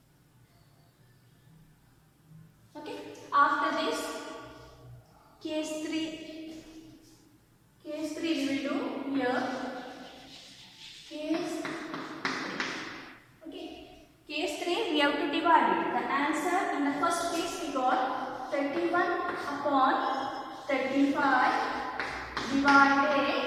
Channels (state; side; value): identical; both; correlation 1.00